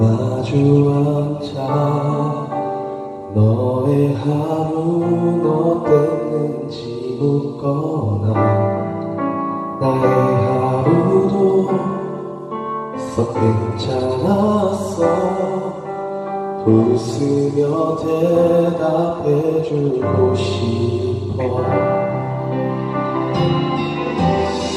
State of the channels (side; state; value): both; identical; correlation 1.00